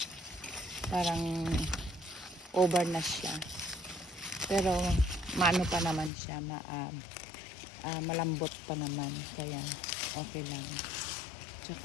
parang over na siya. Pero maano pa naman siya, malambot pa naman. Kaya okay lang.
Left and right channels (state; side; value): drops out; right; at 6.1 s